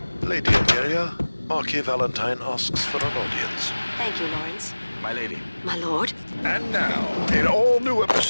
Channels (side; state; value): both; inverted; correlation -1.00